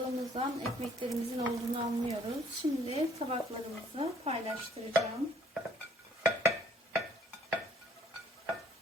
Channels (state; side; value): normal; both; correlation 0.60